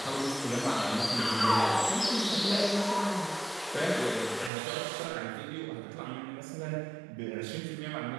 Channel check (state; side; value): drops out; left; at 4.5 s